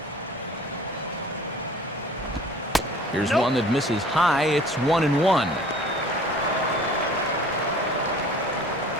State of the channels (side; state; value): both; normal; correlation 0.48